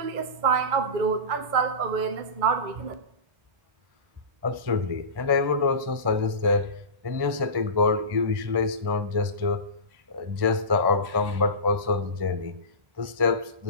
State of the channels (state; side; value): late; left; 1.1 ms